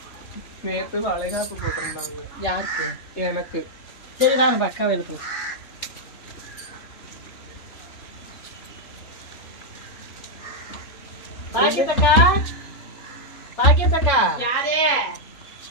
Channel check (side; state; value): right; late; 3.4 ms